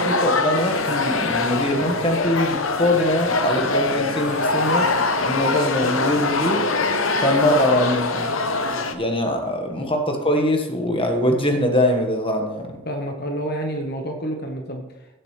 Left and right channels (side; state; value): both; normal; correlation 0.16